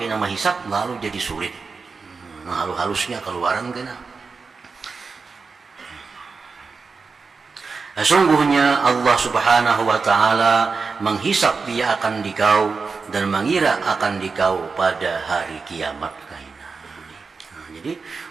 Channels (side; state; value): left; quieter; 4.7 dB